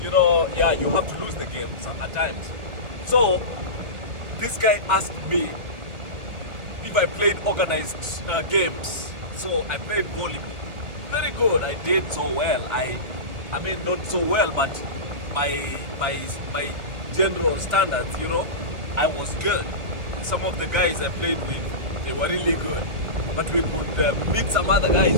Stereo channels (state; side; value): late; left; 1.6 ms